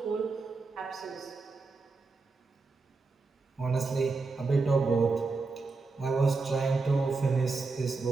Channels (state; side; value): quieter; left; 4.0 dB